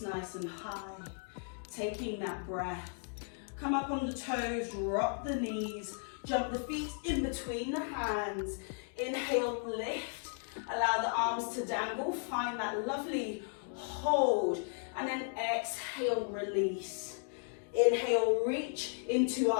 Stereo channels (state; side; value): silent; right; 54 dB below the other